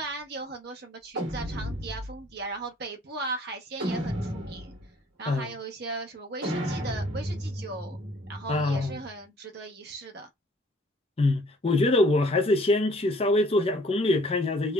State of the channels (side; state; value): both; normal; correlation 0.58